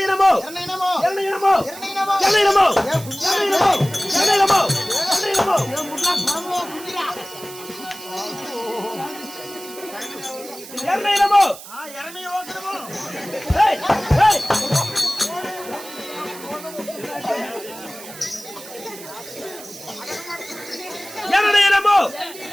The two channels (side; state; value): right; noise; hiss, 15 dB below the sound